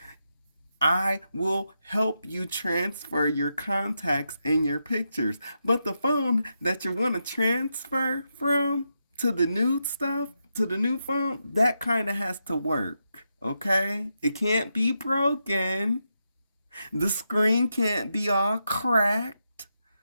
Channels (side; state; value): both; inverted; correlation -0.85